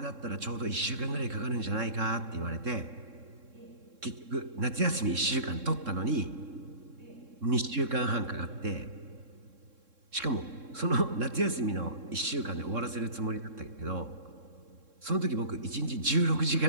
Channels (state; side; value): late; left; 3.7 ms